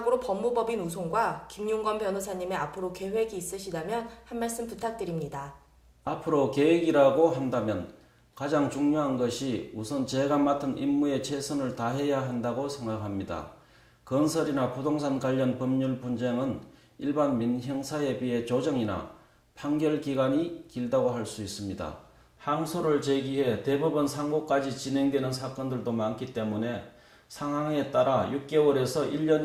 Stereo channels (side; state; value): both; identical; correlation 1.00